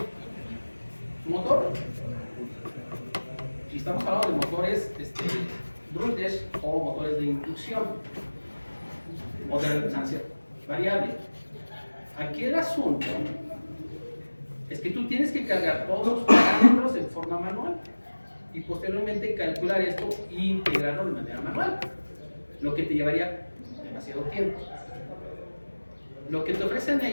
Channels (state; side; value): inverted; both; correlation -1.00